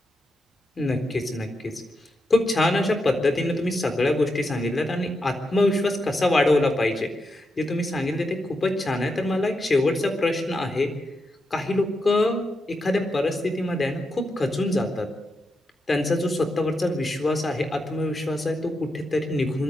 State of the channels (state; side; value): normal; both; correlation 0.85